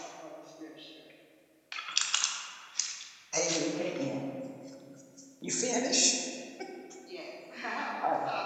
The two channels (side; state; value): both; identical; correlation 1.00